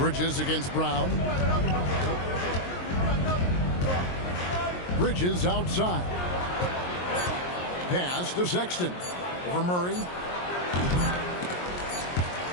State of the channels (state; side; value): late; right; 22 ms